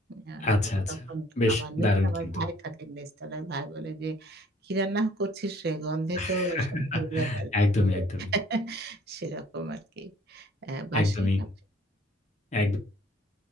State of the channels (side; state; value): both; normal; correlation 0.59